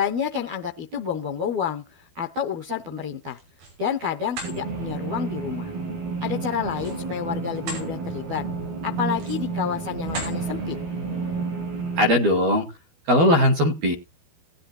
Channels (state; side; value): late; left; 12 ms